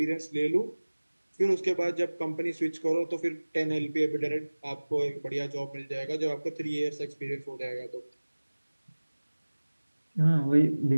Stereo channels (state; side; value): inverted; both; correlation -1.00